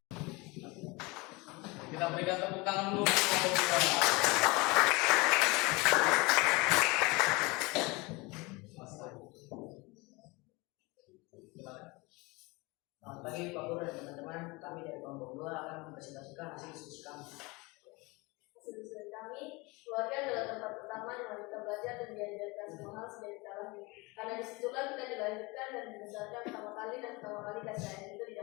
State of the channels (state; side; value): quieter; right; 25.2 dB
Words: Kita berikan tepuk tangan dulu untuk kelompok 2. Selamat pagi Pak Guru dan teman-teman. Kami dari kelompok 2 akan mempresentasikan hasil diskusi kami. Hasil kami, keluarga adalah tempat pertama di mana kita belajar dan diajarkan semua hal sejak kita lahir. Karena disitulah kita dilahirkan dan dibesarkan pertama kali kasih sayang itu